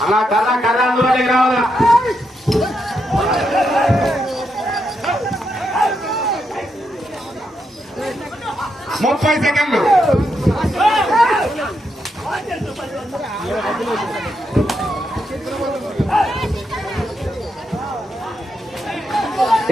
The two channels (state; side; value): normal; both; correlation 0.82